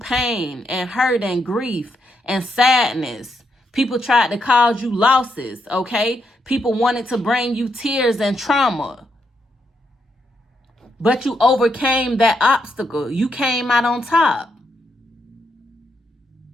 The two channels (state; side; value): normal; both; correlation 0.79